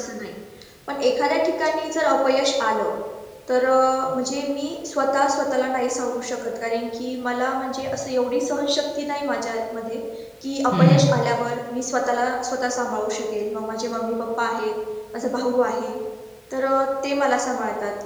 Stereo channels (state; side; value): identical; both; correlation 1.00